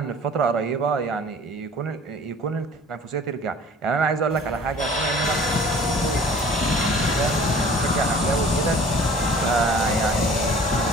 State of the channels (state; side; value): normal; both; correlation 0.48